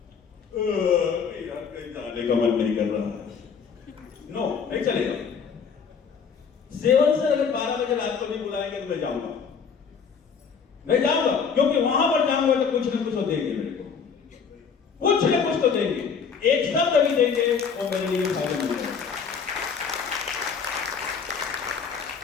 यार कहीं जाने का मन नहीं कर रहा है, नो, नहीं चलेगा। सेवन से अगर 12 बजे रात को भी बुलाएंगे तो मैं जाऊंगा, क्योंकि वहां पर जाऊंगा तो कुछ ना कुछ तो देंगे मेरे को, कुछ ना कुछ तो देंगे, एक शब्द भी देंगे वो मेरे लिए फायदेमंद है।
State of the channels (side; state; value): right; quieter; 6.2 dB